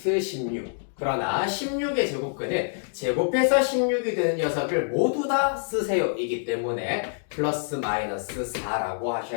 16. 그러나 16의 제곱근은 제곱해서 16이 되는 녀석을 모두 다 쓰세요 이기 때문에 플러스 마이너스 4라고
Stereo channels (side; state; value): right; silent; digital silence